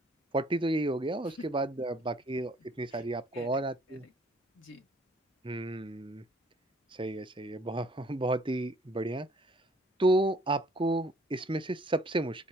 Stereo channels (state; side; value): normal; both; correlation 0.59